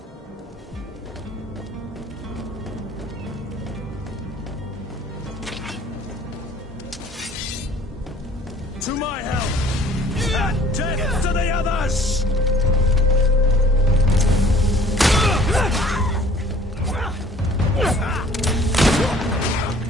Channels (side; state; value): both; normal; correlation 0.54